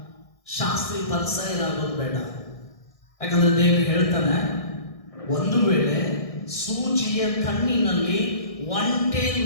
ಶಾಸ್ತ್ರಿ ಪರಿಸರಾಗೋದು ಬೇಡ. ಯಾಕಂದ್ರೆ ದೇವರು ಹೇಳ್ತಾನೆ, ಒಂದು ವೇಳೆ ಸೂಜಿಯ ಕಣ್ಣಿನಲ್ಲಿ ಒಂಟೆ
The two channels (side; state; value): right; late; 1.6 ms